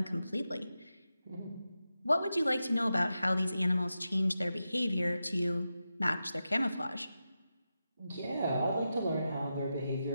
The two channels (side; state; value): both; inverted; correlation -0.90